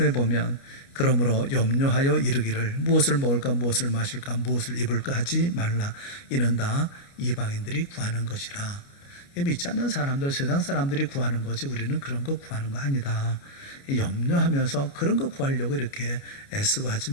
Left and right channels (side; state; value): right; late; 29 ms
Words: 보면 그러므로 염려하여 이르기를 무엇을 먹을까 무엇을 마실까 무엇을 입을까 하지 말라. 이는 다 이방인들이 구하는 것이라. 믿지 않는 사람들, 세상 사람들이 구하는 거지 우리는 그런 거 구하는 거 아니다. 염려하면서 그런 거 구하려고 이렇게 애쓰고 하지